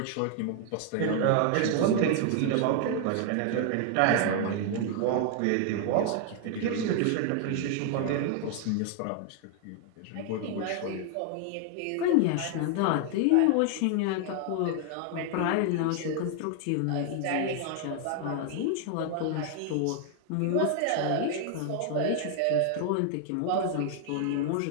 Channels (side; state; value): both; different; correlation 0.00